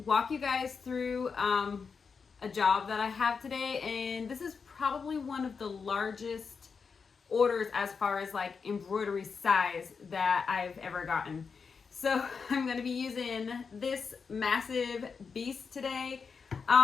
walk you guys through a job that I have today, and this is probably one of the largest orders as far as like embroidery size that I've ever gotten. So I'm going to be using this massive beast today.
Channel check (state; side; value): quieter; right; 5.5 dB